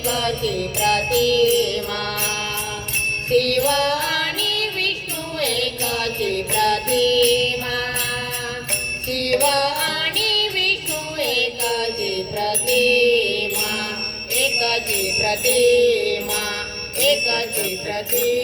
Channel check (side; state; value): both; identical; correlation 1.00